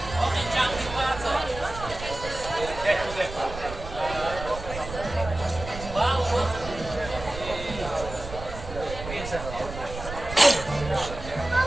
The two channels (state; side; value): noise; right; rumble, 10 dB below the sound